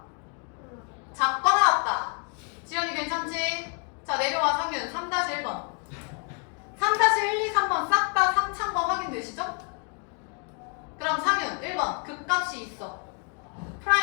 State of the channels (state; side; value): quieter; right; 39.6 dB